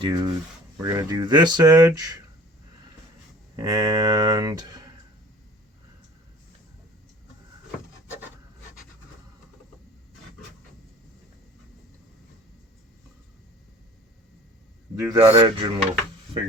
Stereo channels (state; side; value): normal; both; correlation 0.47